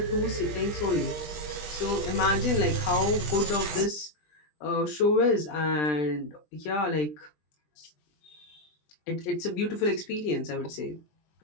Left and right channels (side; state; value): right; late; 20 ms